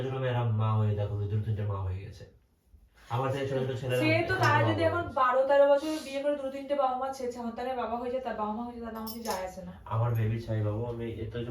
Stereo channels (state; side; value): identical; both; correlation 1.00